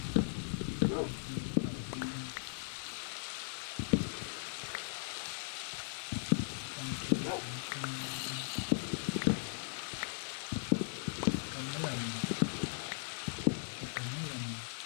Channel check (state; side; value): silent; right; 52 dB below the other